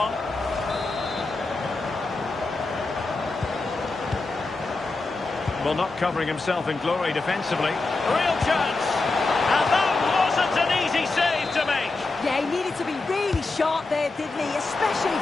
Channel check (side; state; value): right; quieter; 3.5 dB